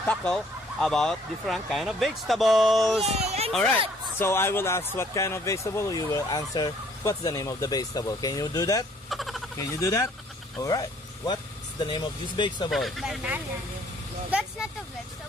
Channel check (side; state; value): both; normal; correlation 0.61